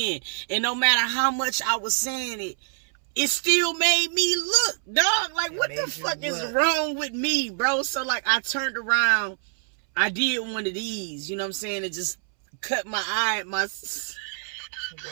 And no matter how much I was saying it still made me look, dog. Like, what the fuck is wrong with me, bro? So, like, I turned around. I did one of these, you know what I'm saying? It just cut my eye at my... The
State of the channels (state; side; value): silent; left; 61 dB below the other